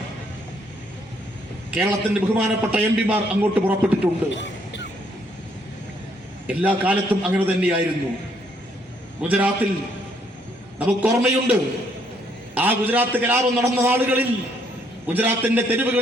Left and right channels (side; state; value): both; normal; correlation 0.69